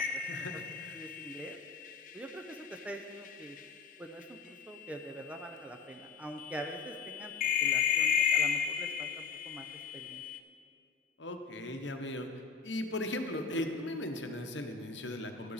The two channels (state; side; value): quieter; right; 5.2 dB